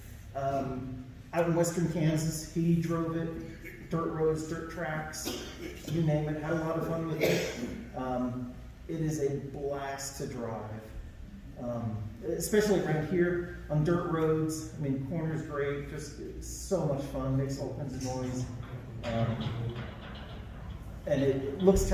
Out in western Kansas, he drove it, dirt roads, dirt tracks, you name it, had a lot of fun with it. It is a blast to drive, especially around here on dirt roads. I mean, corners great, just so much fun, makes all kinds of noise. And it looks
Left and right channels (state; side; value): identical; both; correlation 1.00